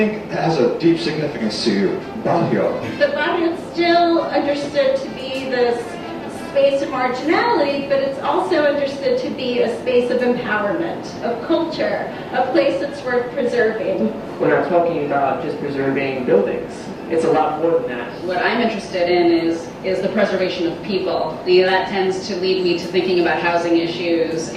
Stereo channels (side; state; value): both; identical; correlation 1.00